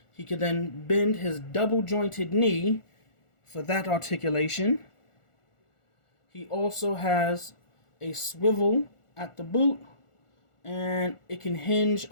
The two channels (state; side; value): late; right; 1.4 ms